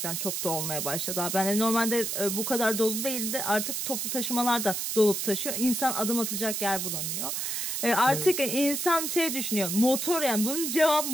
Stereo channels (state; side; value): noise; right; hiss, 2 dB below the sound